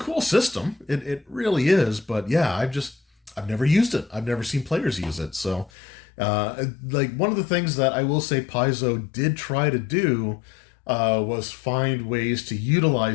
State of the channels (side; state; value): right; drops out; at 5.7 s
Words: system. It really is, but yeah, I've never used it. I've never seen players use it. So, one of the things that I will say Paizo did try to do was find ways to